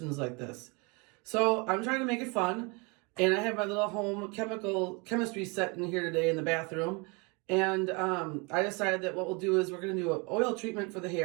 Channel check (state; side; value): quieter; left; 29.8 dB